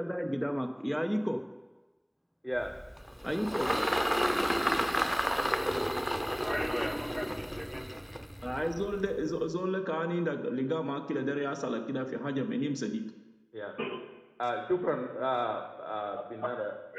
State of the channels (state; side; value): identical; both; correlation 1.00